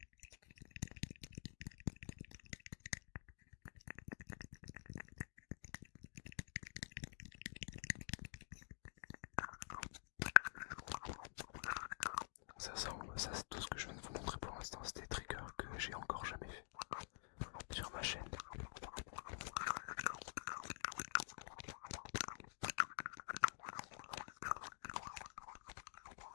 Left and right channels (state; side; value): silent; right; digital silence